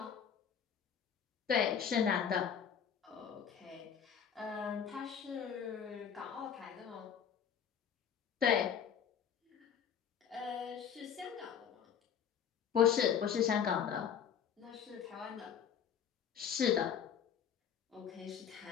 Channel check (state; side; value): quieter; right; 8.0 dB